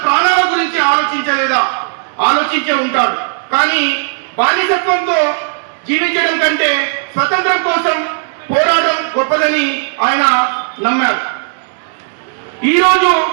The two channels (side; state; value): left; silent; digital silence